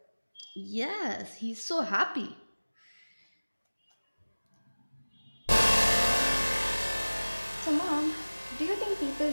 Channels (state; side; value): inverted; both; correlation -1.00